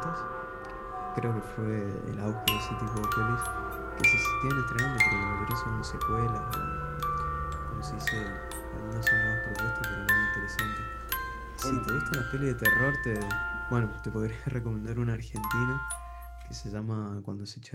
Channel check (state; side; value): identical; both; correlation 1.00